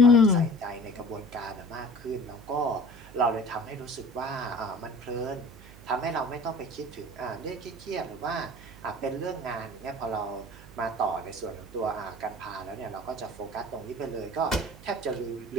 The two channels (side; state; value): right; noise; hum, 19 dB below the sound